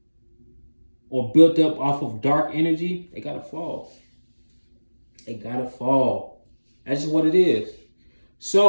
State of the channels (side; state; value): both; inverted; correlation -1.00